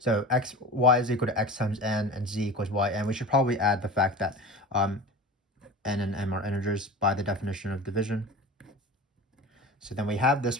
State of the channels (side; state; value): both; normal; correlation 0.34